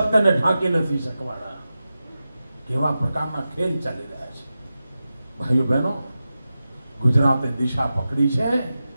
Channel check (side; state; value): both; inverted; correlation -0.93